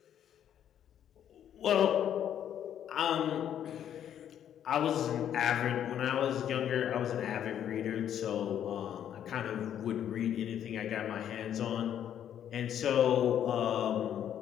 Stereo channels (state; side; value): quieter; right; 9.9 dB